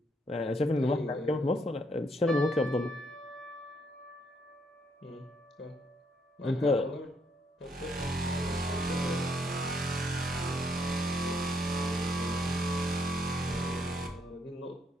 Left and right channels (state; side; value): normal; both; correlation 0.73